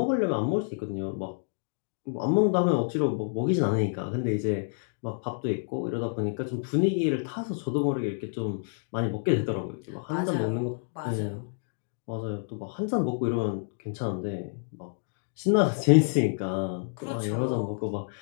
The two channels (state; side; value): silent; right; digital silence